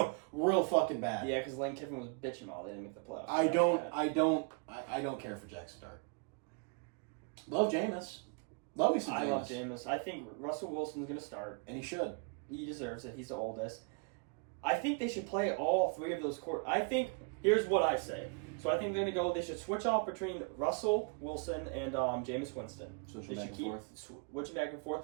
fucking bad. Yeah, because Lane Kiffin was bitching all they didn't make the playoffs. I don't care for Jackson Dart. Love Jameis. Love me some Jameis. I love Jameis. I think Russell Wilson's going to start. And he should. He deserves it. He's the oldest. I think they should play all three of those here's what I say. So I think they're going to they should switch off between Russell Wilson and Jameis Winston. Switch They back should and keep forth. switching back and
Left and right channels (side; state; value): left; quieter; 35.2 dB